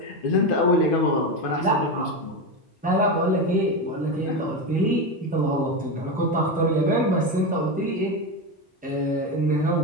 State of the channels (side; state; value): both; normal; correlation 0.16